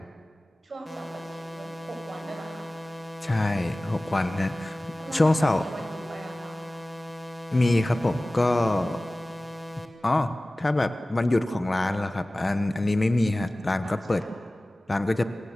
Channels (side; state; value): both; normal; correlation 0.98